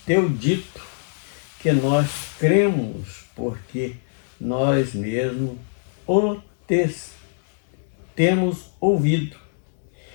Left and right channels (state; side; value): silent; right; 63 dB below the other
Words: teu dito que nós cremos, porque nós mesmos o temos ouvido.